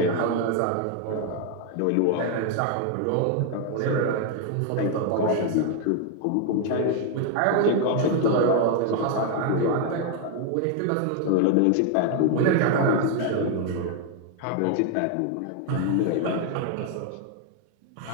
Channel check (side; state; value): both; different; correlation 0.00